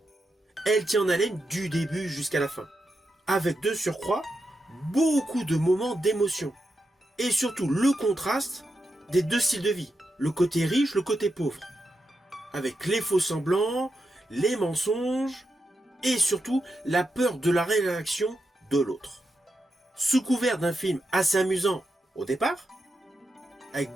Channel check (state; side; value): normal; both; correlation 0.86